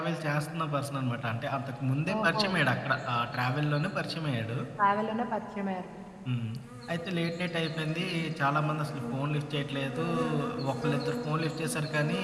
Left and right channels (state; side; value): identical; both; correlation 1.00